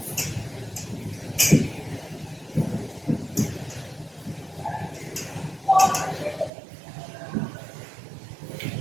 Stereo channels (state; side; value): drops out; left; at 6.5 s